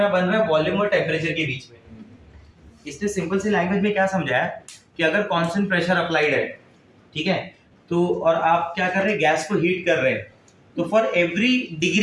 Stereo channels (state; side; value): identical; both; correlation 1.00